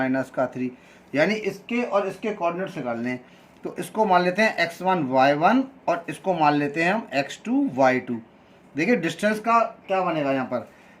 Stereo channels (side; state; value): both; identical; correlation 1.00